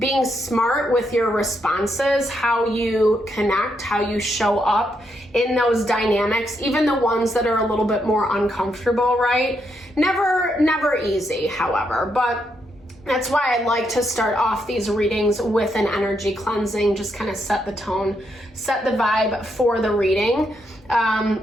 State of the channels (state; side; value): normal; both; correlation 0.79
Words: smart with your responses, how you connect, how you show up in those dynamics, even the ones that are a little bit more uncomfortable, right? Never easy, however, but that's why I like to start off these readings with an energy cleansing, just kind of set the tone, set the vibe for the reading.